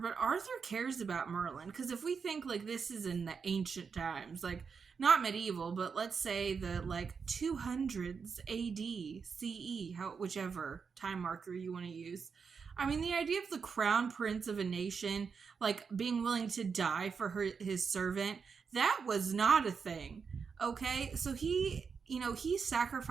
Arthur cares about Merlin, because if we think like this is in the ancient times, like not medieval, but let's say the like 200s AD, CE, whichever time marker you want to use. I mean, the idea of the crown prince of a nation like being willing to die for his servant, that was not a thing. Okay, so he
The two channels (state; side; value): quieter; left; 5.8 dB